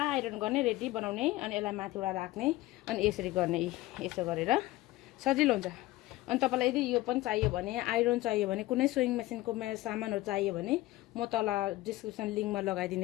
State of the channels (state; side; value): quieter; right; 17.7 dB